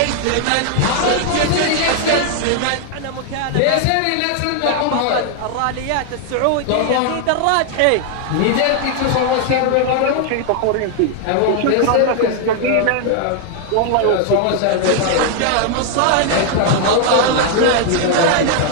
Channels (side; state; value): both; different; correlation 0.00